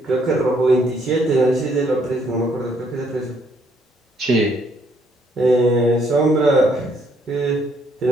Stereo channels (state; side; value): normal; both; correlation 0.69